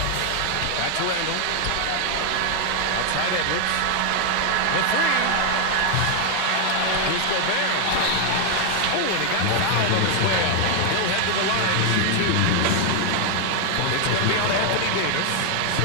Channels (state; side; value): different; both; correlation 0.00